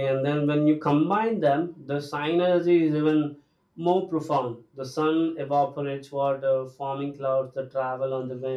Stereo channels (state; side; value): identical; both; correlation 1.00